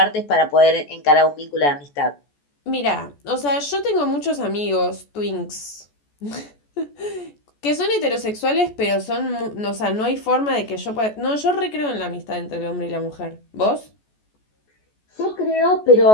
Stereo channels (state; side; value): late; right; 14 ms